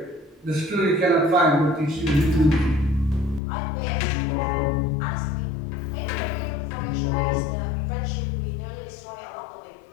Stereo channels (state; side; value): drops out; right; at 3.4 s